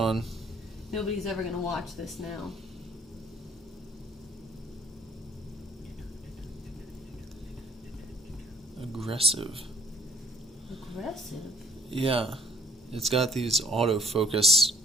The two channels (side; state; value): both; normal; correlation 0.61